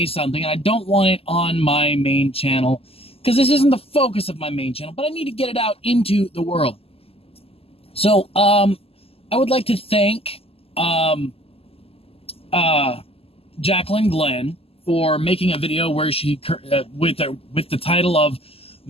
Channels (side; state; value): right; late; 0.28 ms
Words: something, and I don't want it on my main channel because this isn't the focus of my main channel, but I need to get it out into the world. So, I would like to thank Jaclyn Glenn for making a video where she with the title of